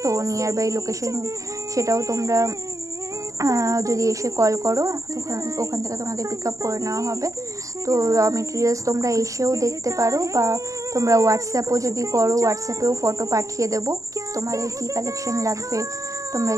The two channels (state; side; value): late; left; 0.16 ms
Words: তো নিয়ার বাই লোকেশন সেটাও তোমরা যদি এসে কল করো, ওখান থেকে তোমাদের পিক আপ করে নেওয়া হবে। তো র মেটেরিয়ালস তোমরা এসেও দেখতে পারো, বা তোমরা হোয়াটসঅ্যাপও যদি করো, হোয়াটসঅ্যাপেও ফটো পাঠিয়ে দেবো। তোমাদের কি কালেকশন লাগবে তোমরা